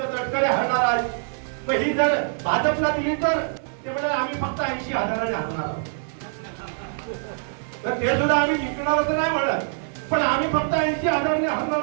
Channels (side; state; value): left; silent; digital silence